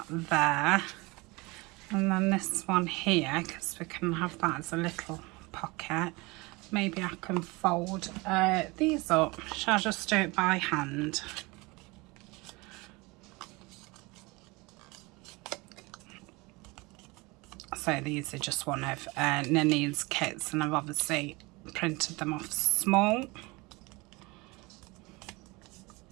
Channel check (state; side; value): quieter; left; 24.6 dB